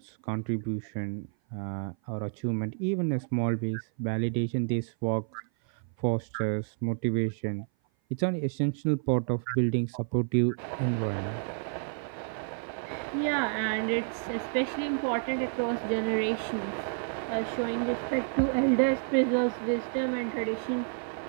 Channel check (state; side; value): silent; left; 56 dB below the other